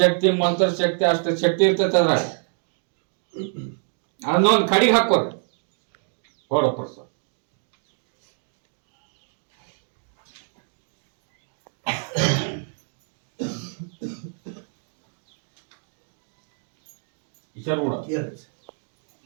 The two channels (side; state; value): left; silent; 61 dB below the other